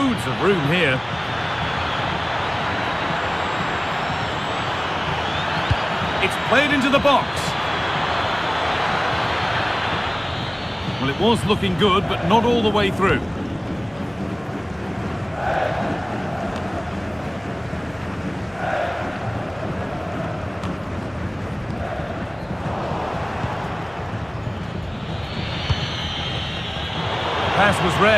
of room here. It's played into the box. Well, it was looking good, but not all the way through. Pass was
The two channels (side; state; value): left; noise; hum, 27 dB below the sound